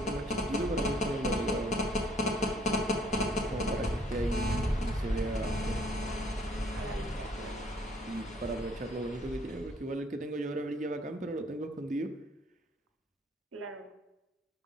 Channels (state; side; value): normal; both; correlation 0.63